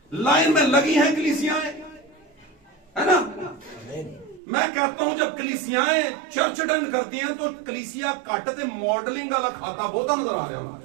लाइन में लगी हैं कलीसियाएं, है ना। मैं कहता हूं जब कलीसियाएं चर्च डन करती हैं तो कलीसिया काटते मॉडलिंग वाला खाता बहुत नजर आ रहा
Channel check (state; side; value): drops out; left; at 4.4 s